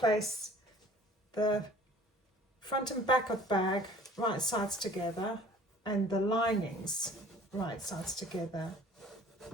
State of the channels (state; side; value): normal; both; correlation 0.50